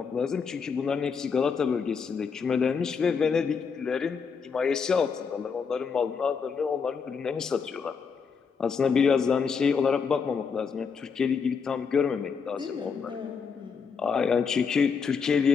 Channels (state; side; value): quieter; right; 5.9 dB